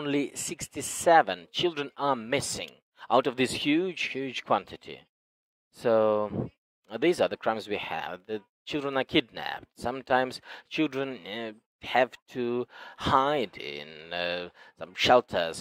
67 children are missing out of this huge quantity. So these are the crimes we have. The children are kidnapped. Sometimes children have to hide in some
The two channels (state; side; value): identical; both; correlation 1.00